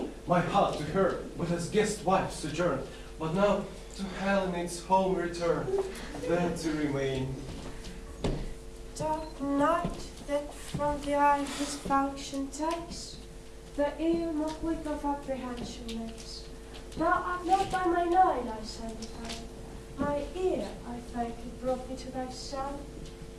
My heart to her, but as guest wife sojourn. But now to Helena its home return, there to remain. Dark night that from the eye his function takes, the ear more quick of apprehension makes. Now art not by mine eye, Lysander, found. My ear, I thank thee, brought me to thy sound.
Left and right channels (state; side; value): identical; both; correlation 1.00